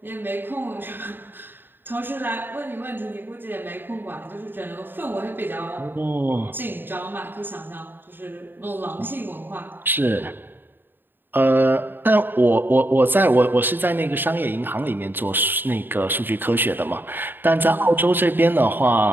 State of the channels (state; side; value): late; left; 0.095 ms